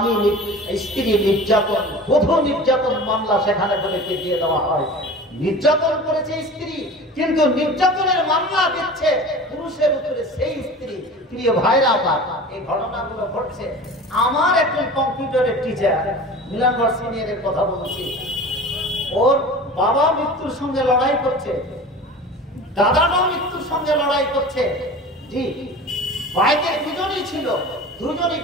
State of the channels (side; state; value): both; normal; correlation 0.37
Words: স্ত্রী নির্যাতন, বধূ নির্যাতন মামলা সেখানে বলে দিয়ে দেওয়া হয়। নির্যাতন করেছে স্ত্রী, কিন্তু নির্যাতনের মামলা দিচ্ছে পুরুষের উপরে সেই স্ত্রী। প্রিয় ভাইরা আমার, এই ঘটনাগুলো ঘটছে। আমার একজন কম্পিউটারের টিচার, মিলনগড় সিনিয়রের কথা বলছি, ওর বাবা মৃত্যুর সঙ্গে লড়াই করছে, দাদাটাও মৃত্যুর সঙ্গে লড়াই করছে। জি, বাইকে দুজনই ছিল, দুজনই